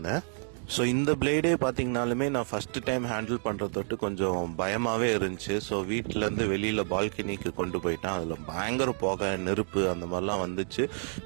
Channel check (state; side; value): silent; left; 58 dB below the other